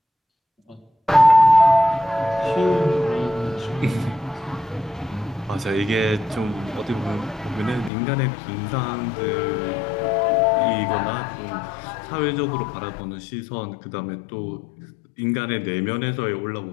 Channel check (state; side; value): drops out; right; at 7.9 s